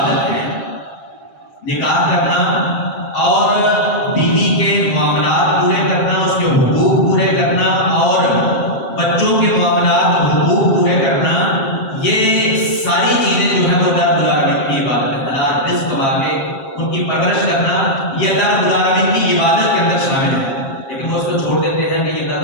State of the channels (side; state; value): right; late; 7.6 ms